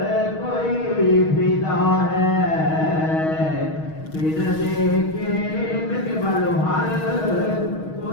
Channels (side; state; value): right; late; 6.3 ms